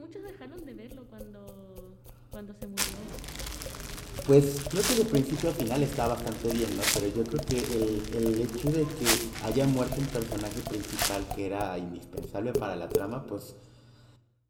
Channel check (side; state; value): both; identical; correlation 1.00